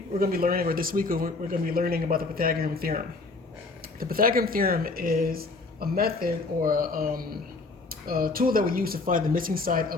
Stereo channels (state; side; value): quieter; right; 3.6 dB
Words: we're going to be learning, or this week we're going to be learning about the Pythagorean Theorem. The Pythagorean Theorem is a method or a tool that we use to find the missing side